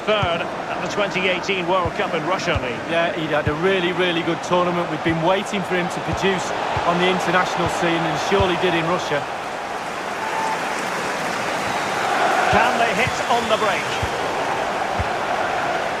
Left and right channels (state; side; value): identical; both; correlation 1.00